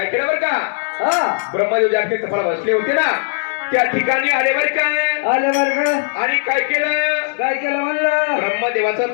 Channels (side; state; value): right; silent; digital silence